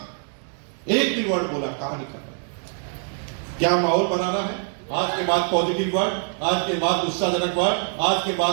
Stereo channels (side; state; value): left; silent; 63 dB below the other